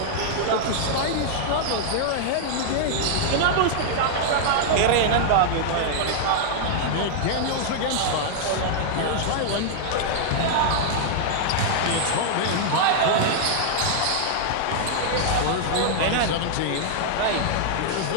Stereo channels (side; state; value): both; different; correlation -0.01